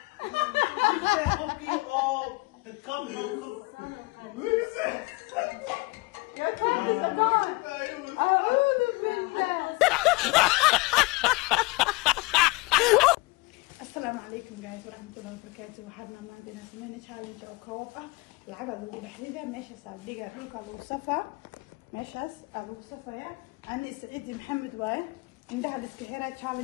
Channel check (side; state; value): right; quieter; 24.8 dB